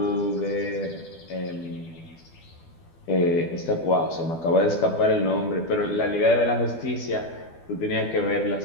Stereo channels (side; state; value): right; late; 12 ms